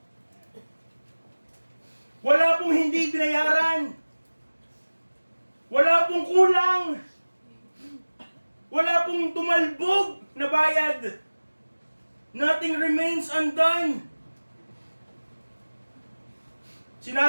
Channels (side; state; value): both; inverted; correlation -1.00